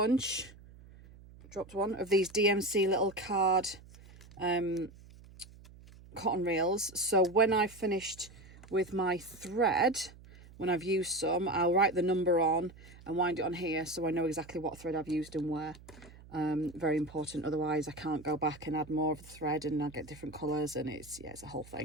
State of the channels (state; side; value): noise; right; hum, 21 dB below the sound